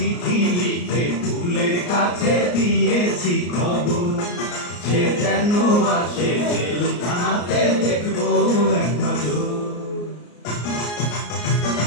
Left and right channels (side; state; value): right; late; 34 ms